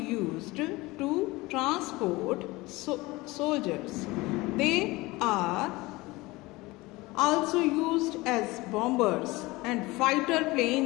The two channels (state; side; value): quieter; right; 21.5 dB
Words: to transport soldiers. They are also used as bombers and fighter